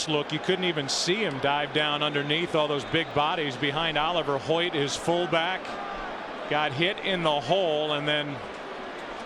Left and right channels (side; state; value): both; identical; correlation 1.00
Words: look, you couldn't even see him dive down underneath all those big bodies behind Oliver Hoyt, his fullback. Got hit in the hole and then